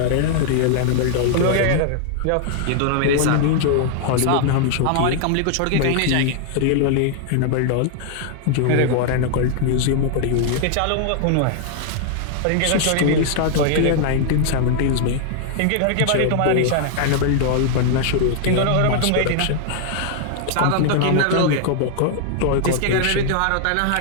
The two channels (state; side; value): different; both; correlation 0.00